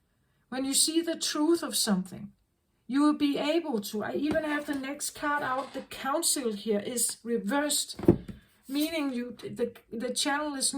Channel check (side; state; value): both; identical; correlation 1.00